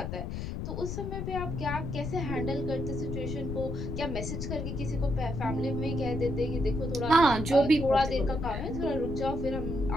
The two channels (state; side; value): noise; left; rumble, 4 dB below the sound